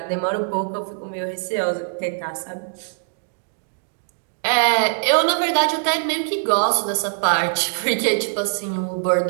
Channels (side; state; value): left; silent; digital silence